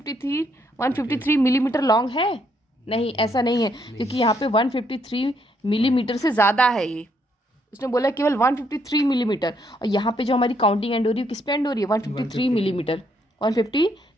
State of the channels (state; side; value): normal; both; correlation 0.72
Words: मिलीमीटर लॉन्ग है? नहीं, ऐसा नहीं है, क्योंकि यहाँ पे 153 मिलीमीटर से ज़्यादा है। ये उसने बोला केवल 153 मिलीमीटर, और यहाँ पे जो हमारी काउंटिंग एंड हो रही है किस पे एंड हो रही है? 153 मिलीमीटर।